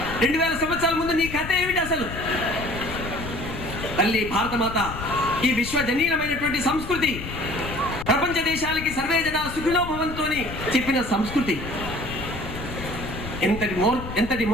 2000 సంవత్సరాల ముందు నీ కథ ఏమిటి అసలు? తల్లి భారతమాత ఈ విశ్వజనీయమైనటువంటి సంస్కృతి, ప్రపంచ దేశాలకి సర్వే జన సుఖినో భవంతోని చెప్పిన సంస్కృతి ఎంతటి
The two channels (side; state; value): left; noise; rumble, 9 dB below the sound